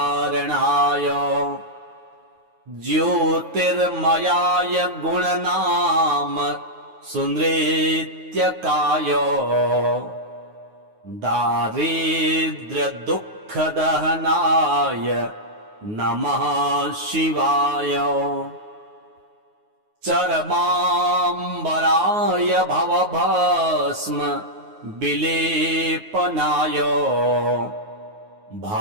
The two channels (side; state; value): left; late; 9.5 ms